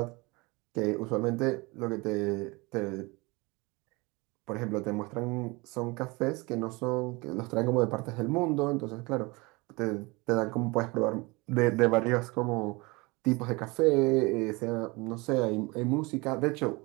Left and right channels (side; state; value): left; quieter; 25.4 dB